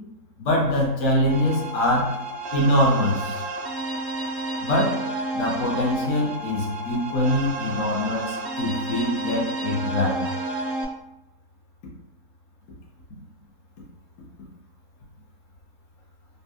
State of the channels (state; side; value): late; right; 3.7 ms